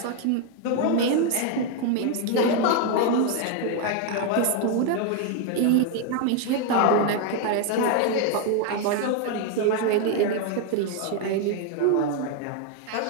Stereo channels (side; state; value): both; different; correlation 0.01